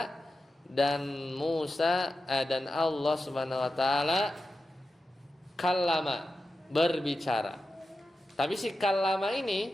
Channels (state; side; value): normal; both; correlation 0.91